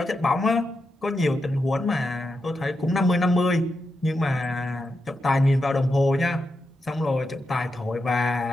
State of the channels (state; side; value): normal; both; correlation 0.87